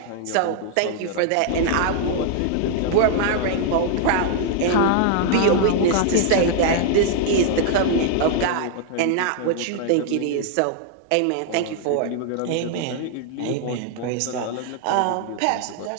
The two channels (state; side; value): different; both; correlation 0.00